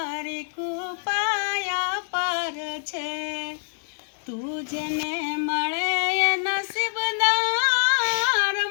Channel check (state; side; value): silent; right; digital silence